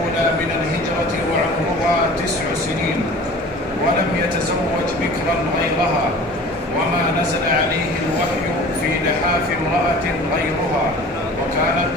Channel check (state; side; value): normal; both; correlation 0.43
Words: من الهجرة وعمرها 9 سنين، ولم يتزوج بكرا غيرها، وما نزل عليه الوحي في لحاف امرأة غيرها، وكانت